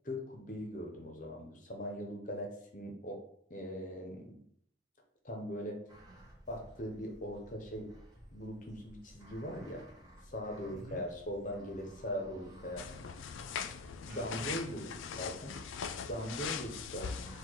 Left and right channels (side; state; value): both; normal; correlation 0.26